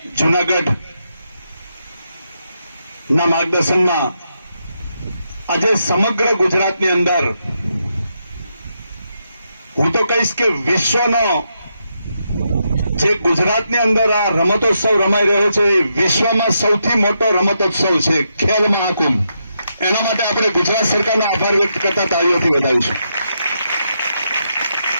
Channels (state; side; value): inverted; both; correlation -0.82